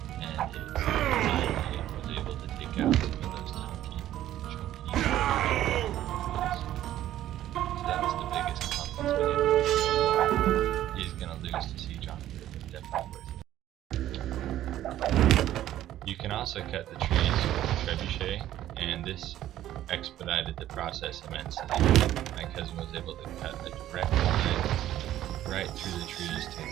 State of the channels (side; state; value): left; quieter; 12.9 dB